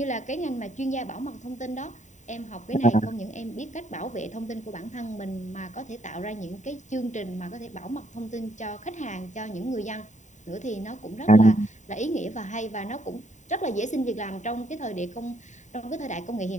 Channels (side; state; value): right; late; 0.35 ms